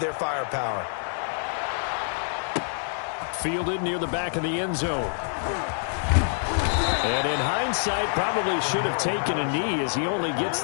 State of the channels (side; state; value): right; silent; digital silence